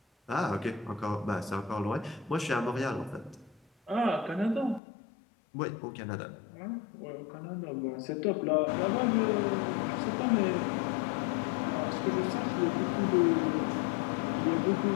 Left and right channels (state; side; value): drops out; right; at 4.8 s